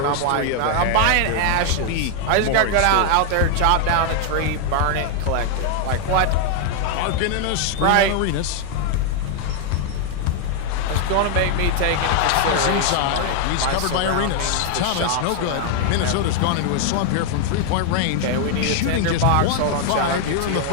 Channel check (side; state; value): both; different; correlation 0.00